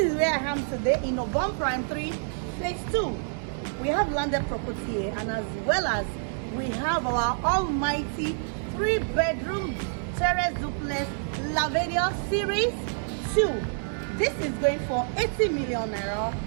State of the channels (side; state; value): left; silent; 60 dB below the other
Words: where I am today in Ogombo Prime 3, Phase 2. We have landed property here, and as well as we have our almighty 3-bedroom Terrace Duplex Lavadia Series 2. This is going for 80 million naira.